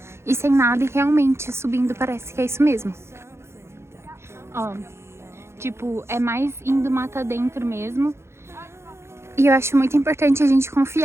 e sem nada, e realmente subindo parece que é isso mesmo. Ó, tipo, é mais indo mata dentro mesmo. E eu acho muito importante a gente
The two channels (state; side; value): late; left; 0.13 ms